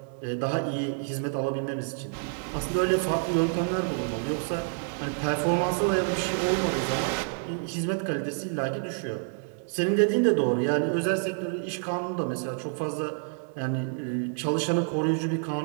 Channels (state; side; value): silent; left; 59 dB below the other